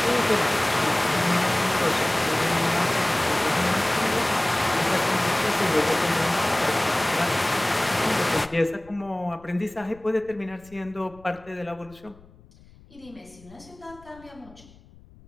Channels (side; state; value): left; noise; rumble, 25 dB below the sound